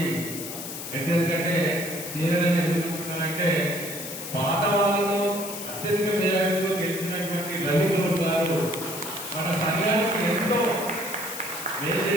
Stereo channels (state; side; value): noise; left; hiss, 8 dB below the sound